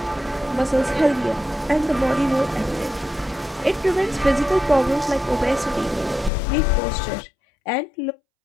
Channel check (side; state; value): right; drops out; at 6.3 s